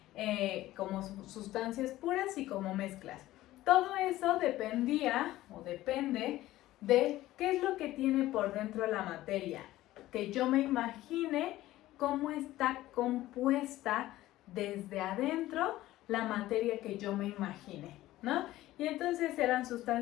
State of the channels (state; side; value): quieter; right; 15.8 dB